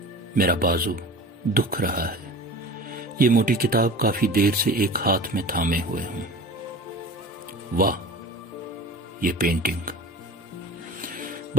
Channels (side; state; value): both; normal; correlation 0.36